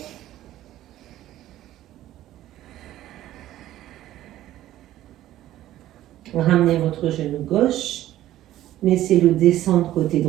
Ramenez votre genou gauche. Laissez-le descendre côté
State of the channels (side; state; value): left; quieter; 13.8 dB